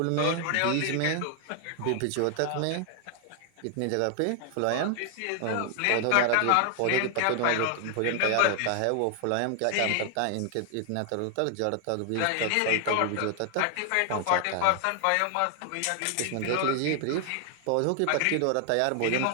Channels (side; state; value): both; different; correlation 0.00